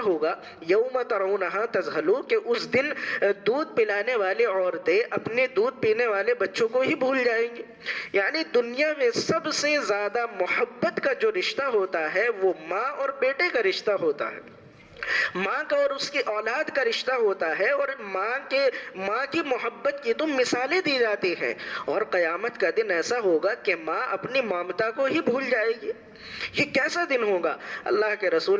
ہوگا یوم ترونہا تذہلو کہ اس دن دودھ پلانے والی عورتیں اپنے دودھ پینے والے بچوں کو ہی بھول جائیں گے. یعنی دنیا میں سب سے زیادہ محبت کا جو رشتہ ہوتا ہے وہ ماں اور بیٹے کا رشتہ ہوتا ہے، ماں کا اور اس کی اولاد کا رشتہ ہوتا ہے، اور ماں کی محبت کی تو مثالیں دی جاتی ہیں. اور قیامت کا دن ایسا ہوگا کہ ماں اپنی ممتا کو ہی بھول جائے گی. یہ کیسا دن ہوگا؟ اللہ کے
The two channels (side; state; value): both; identical; correlation 1.00